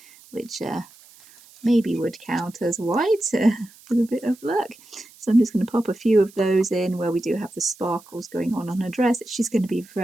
which maybe would count as white with a bit of luck. So I'm just going to pop a few of those in where we do have the sparkles going on her dress. She's going to be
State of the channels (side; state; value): right; noise; hiss, 25 dB below the sound